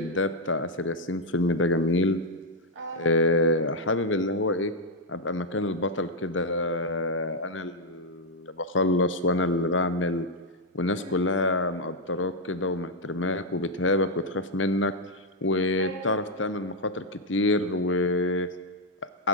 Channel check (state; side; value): normal; both; correlation -0.01